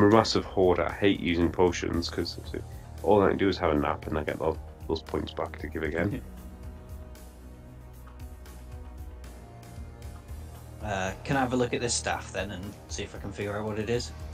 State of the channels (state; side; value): identical; both; correlation 1.00